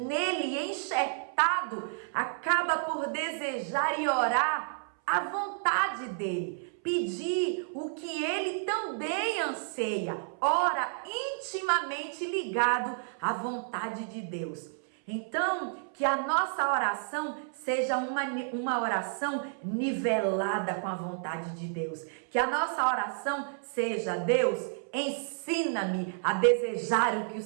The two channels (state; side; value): silent; left; 57 dB below the other